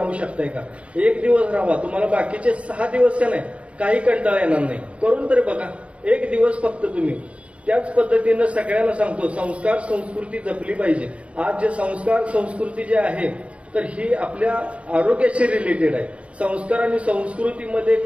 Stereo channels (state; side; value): late; left; 0.062 ms